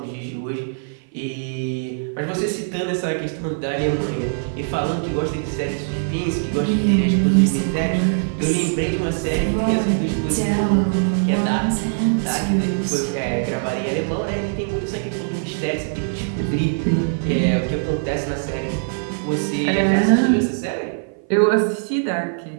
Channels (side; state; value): left; silent; 56 dB below the other